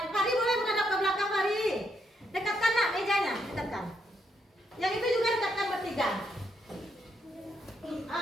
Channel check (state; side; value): normal; both; correlation 0.77